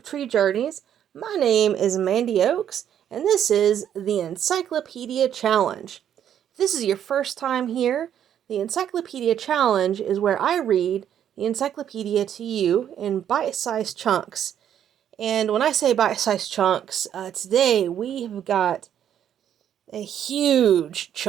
Tree Journeys. My name is Mandy Oaks, and this is the Encyclopedia Challenge. If this is your first time here, the Encyclopedia Challenge is where I read the encyclopedia to you in bite-sized chunks. And when I say bite-sized chunks, today we have got a huge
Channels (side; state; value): left; quieter; 9.8 dB